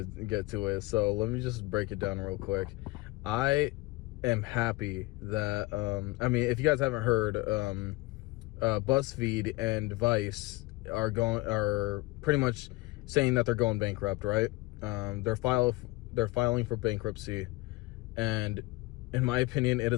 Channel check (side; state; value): right; quieter; 21.5 dB